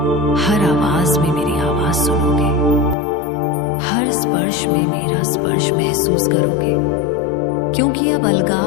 हर आवाज में मेरी आवाज सुनोगे, हर स्पर्श में मेरा स्पर्श महसूस करोगे, क्योंकि अब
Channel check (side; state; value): right; drops out; at 3.0 s